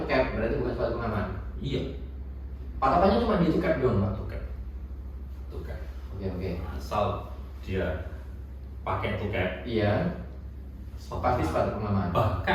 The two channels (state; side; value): identical; both; correlation 1.00